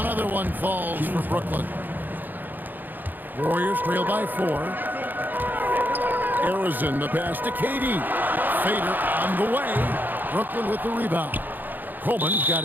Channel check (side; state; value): left; late; 0.088 ms